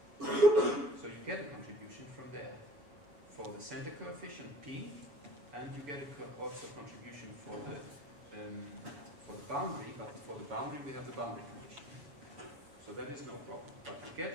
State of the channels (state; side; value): late; left; 7.0 ms